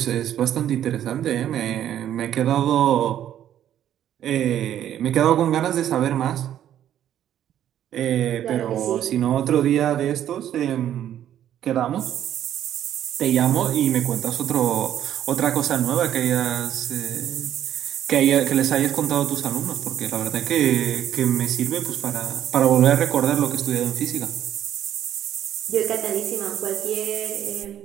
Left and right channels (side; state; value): left; quieter; 11.0 dB